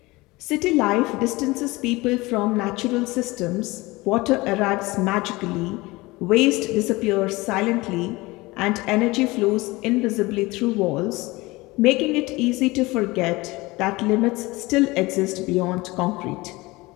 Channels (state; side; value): quieter; right; 21.9 dB